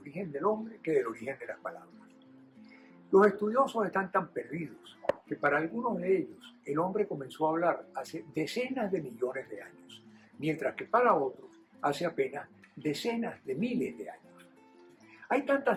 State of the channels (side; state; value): both; identical; correlation 1.00